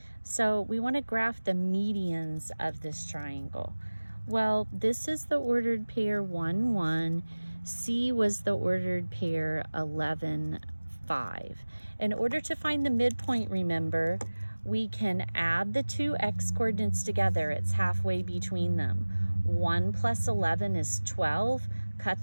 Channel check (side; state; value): both; inverted; correlation -1.00